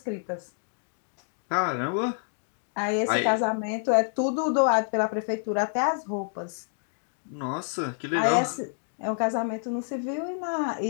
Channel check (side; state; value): right; silent; 59 dB below the other